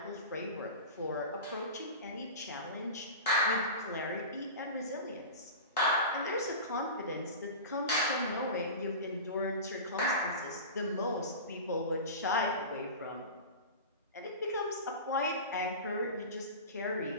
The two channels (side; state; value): both; inverted; correlation -0.30